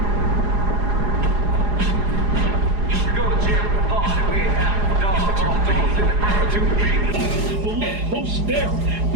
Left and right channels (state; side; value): late; left; 4.8 ms